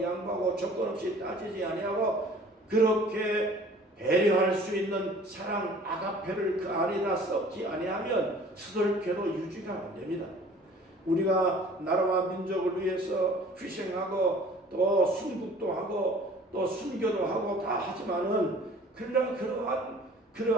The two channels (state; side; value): normal; both; correlation 0.50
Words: 양보하고 조건 없이 따지지 아니하고 그렇게 배려할 수 있는 사랑 아가페를 그 안에다 섞지 아니하면 스덜케도 유지가 안 됩니다. 우리가 나라와 민족을 위해서 희생하고 또 순국도 하고 또 순교도 하고 다 하지만은